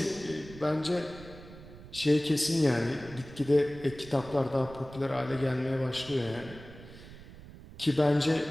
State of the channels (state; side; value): noise; right; rumble, 17 dB below the sound